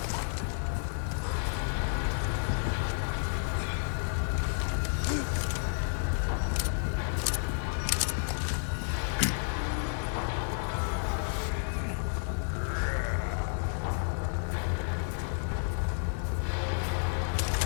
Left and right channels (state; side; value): silent; right; digital silence